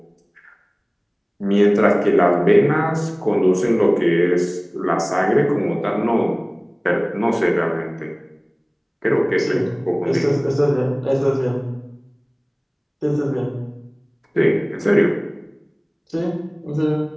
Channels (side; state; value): both; identical; correlation 1.00